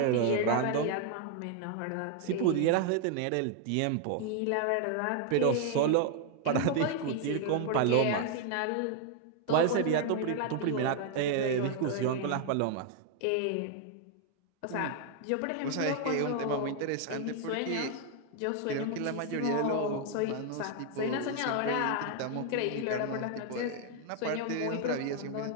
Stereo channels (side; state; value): both; different; correlation 0.00